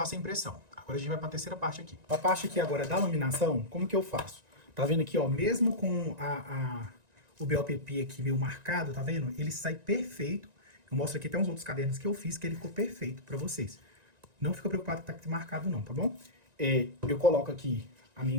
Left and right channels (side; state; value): left; late; 1.9 ms